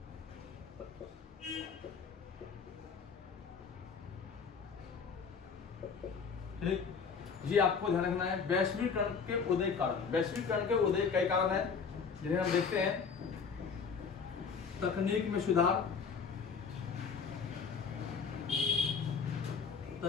ठीक, ये आपको ध्यान रखना है। वैश्वीकरण के उदय कारण, वैश्वीकरण के उदय कई कारण है जिन्हें हम देखते हैं। तकनीक में सुधार,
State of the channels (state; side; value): quieter; right; 5.8 dB